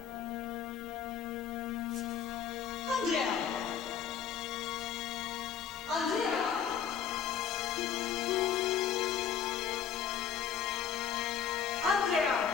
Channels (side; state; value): right; quieter; 8.1 dB